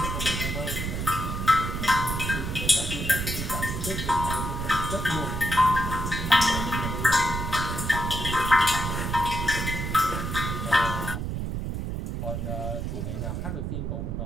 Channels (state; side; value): noise; right; rumble, 3 dB below the sound